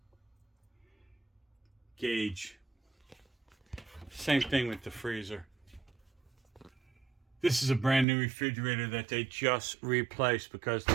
gauge. Same thing with the freezer. This is a brand new refrigerator that they just replaced because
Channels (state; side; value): drops out; left; at 8.1 s